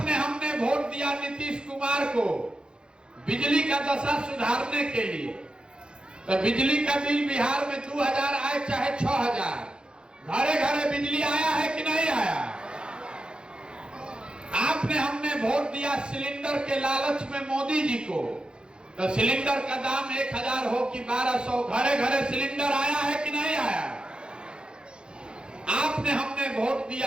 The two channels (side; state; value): left; late; 0.050 ms